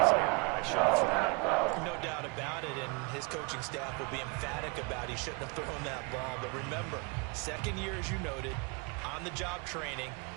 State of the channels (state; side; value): quieter; left; 31.5 dB